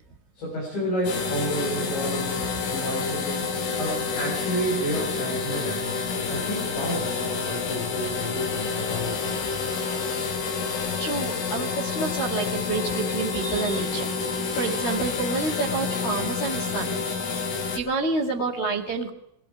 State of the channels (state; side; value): late; right; 16 ms